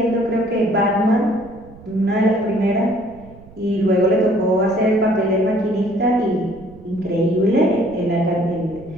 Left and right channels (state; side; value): noise; right; rumble, 21 dB below the sound